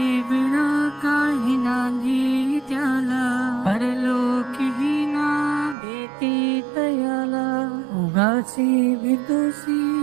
विना काही नांदी त्याला, परलोकीही ना भीती तयाला. उगाची भीतोसी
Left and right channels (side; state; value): left; drops out; at 5.8 s